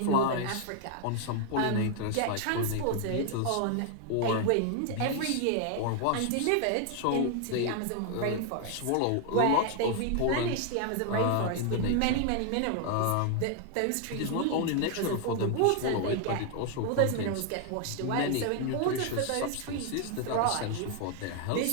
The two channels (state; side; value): different; both; correlation 0.00